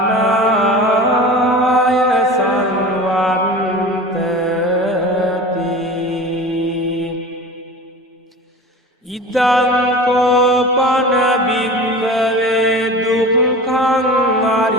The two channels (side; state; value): both; normal; correlation 0.35